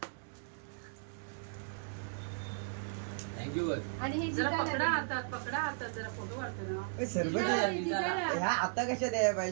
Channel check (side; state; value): left; silent; digital silence